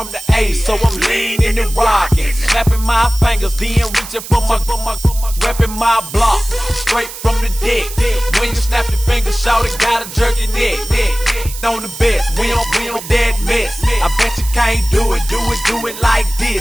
the A, so I'm leaning and rocking, snapping my fingers, then reaching for my repping my block, straight from the deck. When you snap your fingers, shout it, gotta jerk your neck. On the best, we don't that mess. I bet you can't do it like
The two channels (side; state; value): right; noise; hiss, 12 dB below the sound